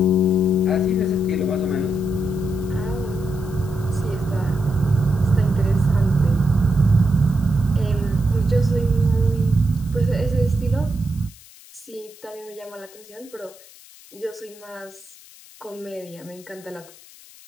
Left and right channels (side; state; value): left; noise; hiss, 22 dB below the sound